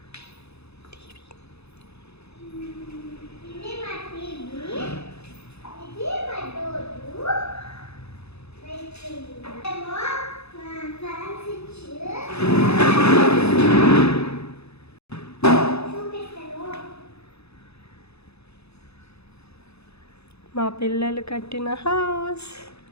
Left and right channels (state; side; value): late; right; 0.79 ms